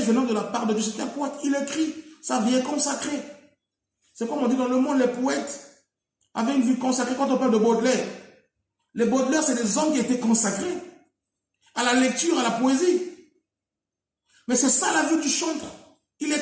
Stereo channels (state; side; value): identical; both; correlation 1.00